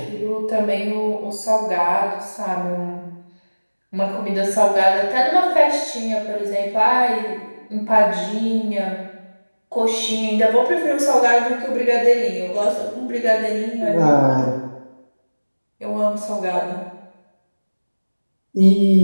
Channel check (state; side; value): inverted; both; correlation -1.00